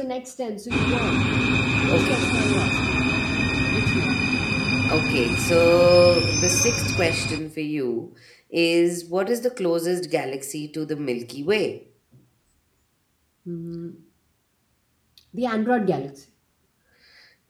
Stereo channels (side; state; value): both; identical; correlation 1.00